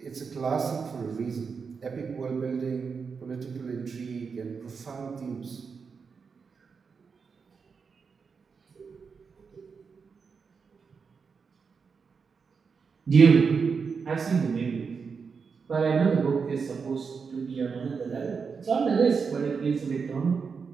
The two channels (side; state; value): left; quieter; 5.5 dB